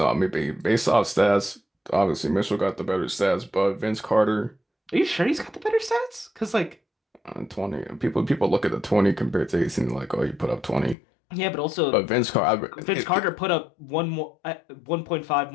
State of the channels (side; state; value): right; drops out; at 11.0 s